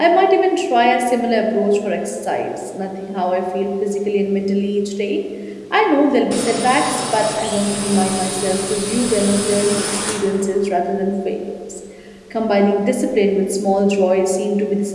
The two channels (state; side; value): identical; both; correlation 1.00